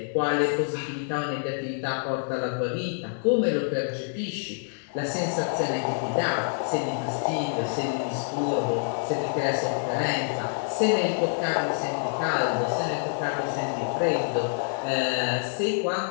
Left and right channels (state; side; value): silent; right; digital silence